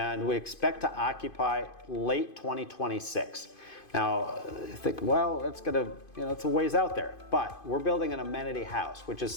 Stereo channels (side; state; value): right; late; 2.5 ms